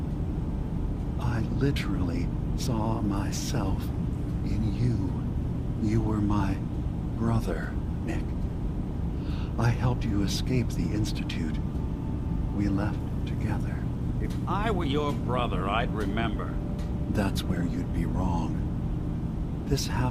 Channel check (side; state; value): both; identical; correlation 1.00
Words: I literally saw myself in you. You were my brother, Nick. I helped you escape the Institute. We left together. If I were your brother, I'd remember. That's where you'd be wrong. This